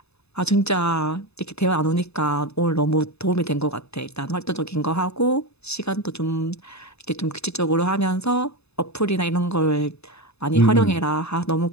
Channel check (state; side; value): late; right; 0.79 ms